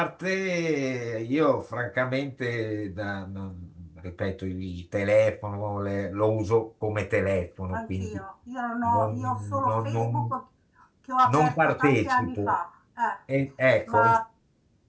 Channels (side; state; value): both; identical; correlation 1.00